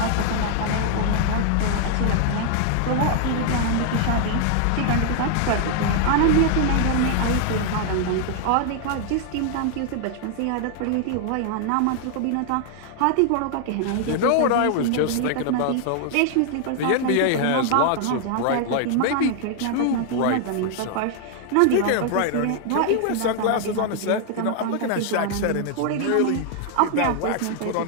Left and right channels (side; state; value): both; different; correlation 0.00